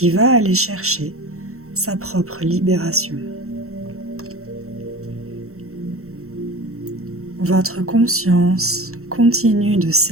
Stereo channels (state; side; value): late; left; 0.63 ms